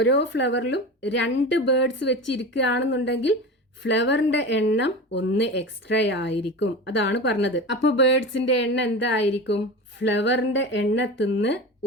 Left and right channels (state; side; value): normal; both; correlation 0.29